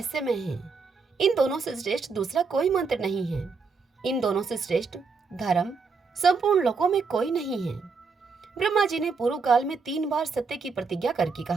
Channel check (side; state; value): left; quieter; 4.8 dB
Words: हैं। इन दोनों से श्रेष्ठ दूसरा कोई मंत्र नहीं है। इन दोनों से श्रेष्ठ धर्म संपूर्ण लोकों में कोई नहीं है। ब्रह्मा जी ने पूर्व काल में 3 बार सत्य की प्रतिज्ञा करके